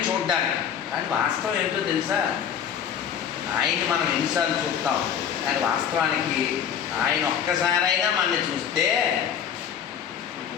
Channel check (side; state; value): right; quieter; 8.6 dB